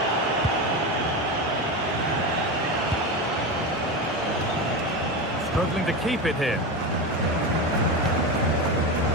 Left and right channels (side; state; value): both; normal; correlation 0.20